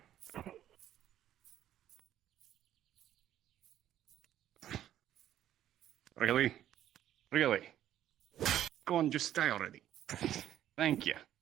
Really? Really? Go on, just stay already. Thank you.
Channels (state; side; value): quieter; left; 11.6 dB